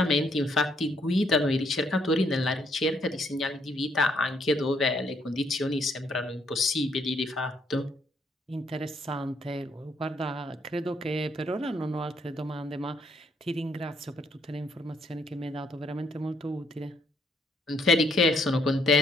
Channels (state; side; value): normal; both; correlation 0.71